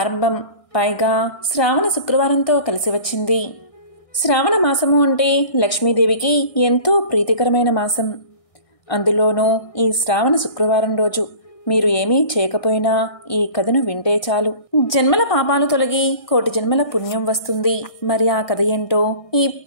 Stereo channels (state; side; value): late; right; 1.6 ms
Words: పైగా శ్రావణ శుక్రవారంతో కలిసి వచ్చింది. శ్రావణ మాసము అంటే లక్ష్మీదేవికి ఎంతో ప్రీతికరమైన మాసం. అందులోనూ ఈ శ్రావణ శుక్రవారం రోజు మీరు ఏమీ చేయకపోయినా ఈ కథను వింటే చాలు, జన్మల పాపాలు తొలగి కోటి జన్మల పుణ్యం వస్తుంది. మరి ఆ కథ ఏంటో